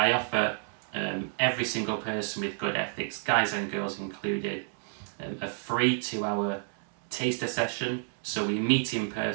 offer every single person with good ethics, guys and girls included, a free 2-hour taster session. So we meet in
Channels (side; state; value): left; silent; 56 dB below the other